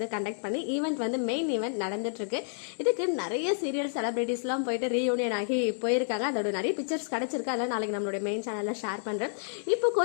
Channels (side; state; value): right; silent; digital silence